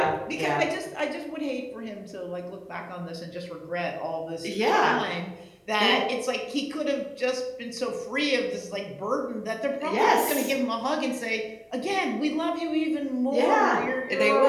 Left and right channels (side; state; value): both; identical; correlation 1.00